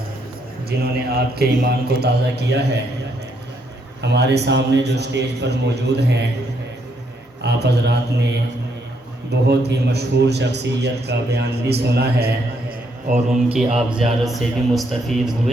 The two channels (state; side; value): normal; both; correlation 0.74